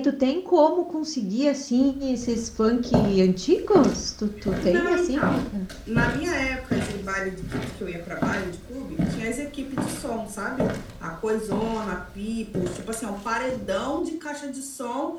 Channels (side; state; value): both; identical; correlation 1.00